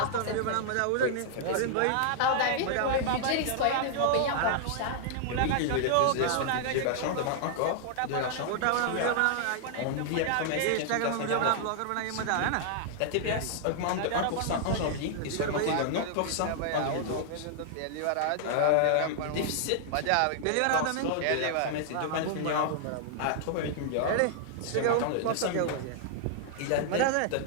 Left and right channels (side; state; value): both; different; correlation -0.01